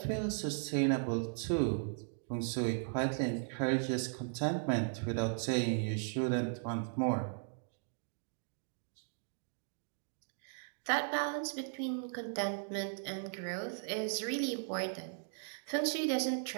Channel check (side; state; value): left; silent; digital silence